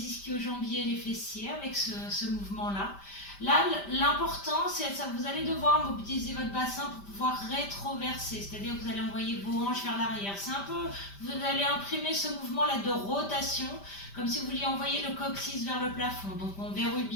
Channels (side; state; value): right; late; 5.1 ms